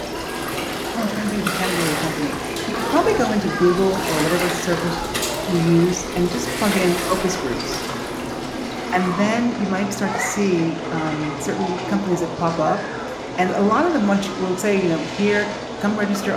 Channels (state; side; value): identical; both; correlation 1.00